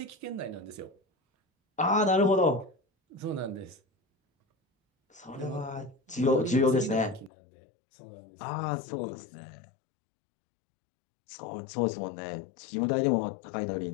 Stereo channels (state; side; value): drops out; right; at 7.3 s